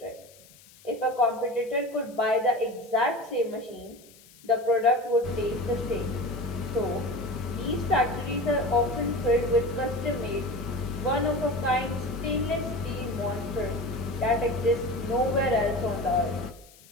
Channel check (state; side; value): noise; left; hiss, 24 dB below the sound